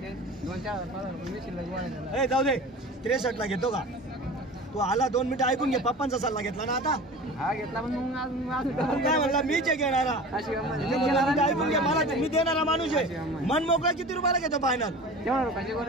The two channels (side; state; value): both; normal; correlation 0.37